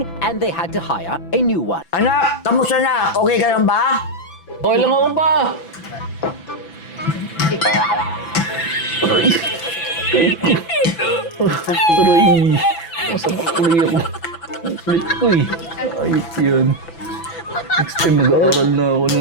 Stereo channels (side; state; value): right; late; 6.0 ms